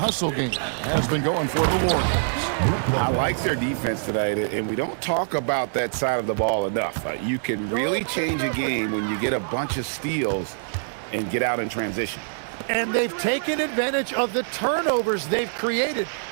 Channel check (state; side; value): silent; left; digital silence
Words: game has been going for the Warriors. I like their defense tonight, and we don't talk about that side of the ball enough. You can really change a game when you get a bunch of steals and get out in transition. And they've taken advantage of the turnovers they've created,